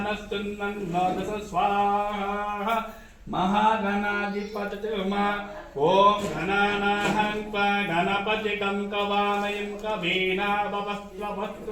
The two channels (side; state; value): both; identical; correlation 1.00